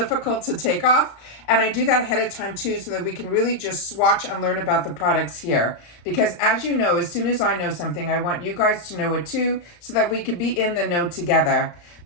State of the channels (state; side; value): late; right; 34 ms